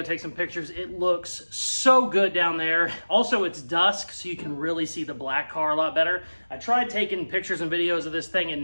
take some pictures. It looks so good down there. Also, it's dusk, so you can really see the black car a lot better. I tried taking pictures and videos of this thing at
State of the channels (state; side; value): inverted; both; correlation -1.00